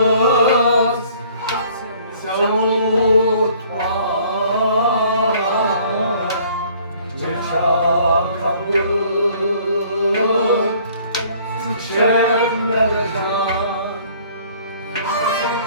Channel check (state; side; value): inverted; both; correlation -0.56